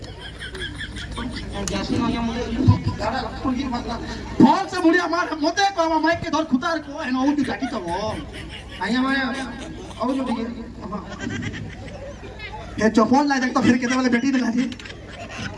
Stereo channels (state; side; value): identical; both; correlation 1.00